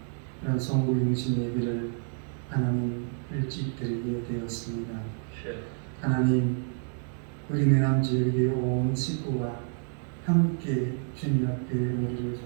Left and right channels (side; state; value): left; silent; 59 dB below the other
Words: 그런 성부용신 예배를 하나님 일찍 드리게 되었습니다. 하나님, 우리 내남지역의 온 식구가 함께 주님 앞에 머리를